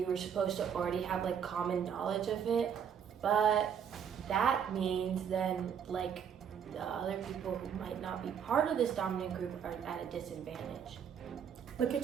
were supposed to already have like common knowledge of it, but that means then like the other people who might not be part of this dominant group are at a disadvantage. Look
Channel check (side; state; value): left; quieter; 7.9 dB